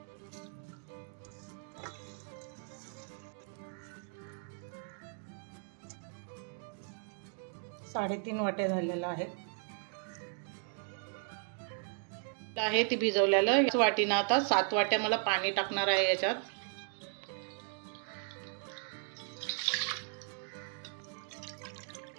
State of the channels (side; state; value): left; silent; 54 dB below the other